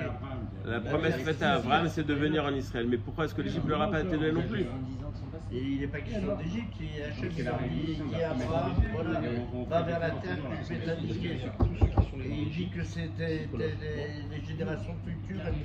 La promesse faite à Abraham, c'est de venir en Israël. Mais pourquoi est-ce que l'Égypte ne leur a pas été donnée non plus? Et il n'est pas question d'Égypte, Hachem dit à Abraham, voilà, va vers la terre que je vais t'indiquer. Et il dit que c'était les générations futures,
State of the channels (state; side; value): identical; both; correlation 1.00